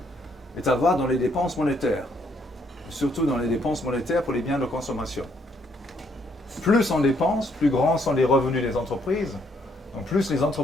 est à voir dans les dépenses monétaires, surtout dans les dépenses monétaires pour les biens de consommation. Plus on dépense, plus grands sont les revenus des entreprises, donc plus les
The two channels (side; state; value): both; normal; correlation 0.71